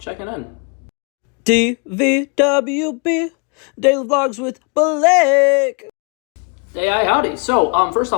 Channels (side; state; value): right; quieter; 35.2 dB